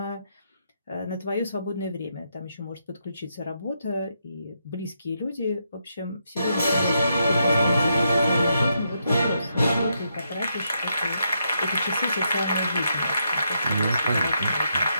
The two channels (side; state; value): both; inverted; correlation -0.80